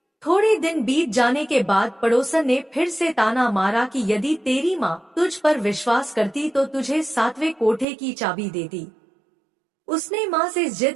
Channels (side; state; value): left; drops out; at 7.9 s